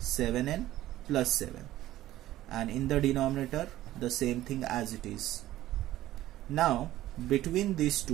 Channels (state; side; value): quieter; left; 14.7 dB